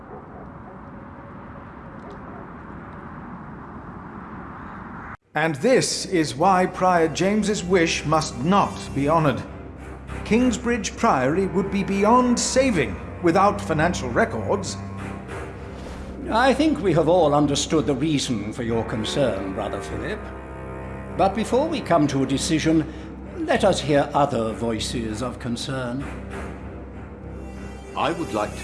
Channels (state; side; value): identical; both; correlation 1.00